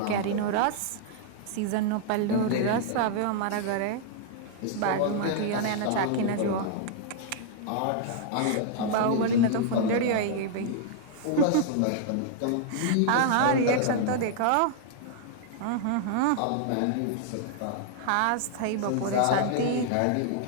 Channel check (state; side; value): different; both; correlation -0.01